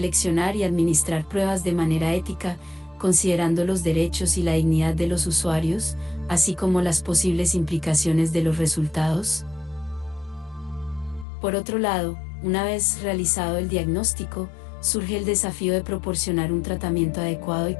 y administrar pruebas de manera ética, considerando los derechos y la dignidad de los usuarios, así como las posibles implicaciones de los resultados. Por otro lado, una vez realizado el diagnóstico, surge el desafío de proporcionar un tratamiento adecuado y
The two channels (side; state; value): right; drops out; at 11.2 s